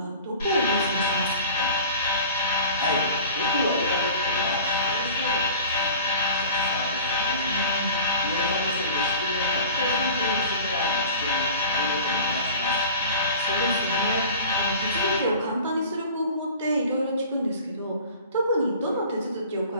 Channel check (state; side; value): inverted; both; correlation -0.41